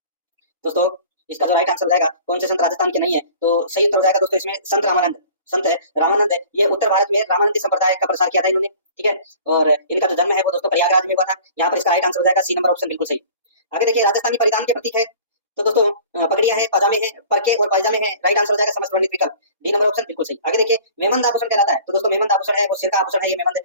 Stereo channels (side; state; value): both; inverted; correlation -0.45